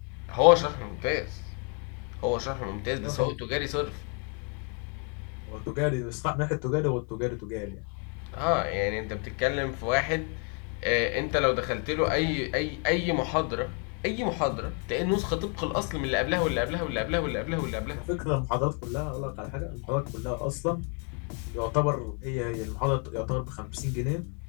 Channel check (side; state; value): right; quieter; 38.5 dB